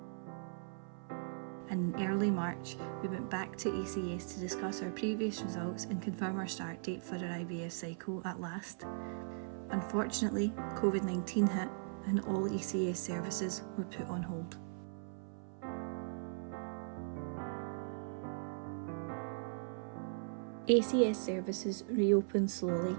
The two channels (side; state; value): left; silent; 52 dB below the other